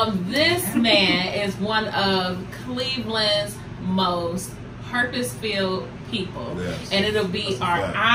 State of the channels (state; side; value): identical; both; correlation 1.00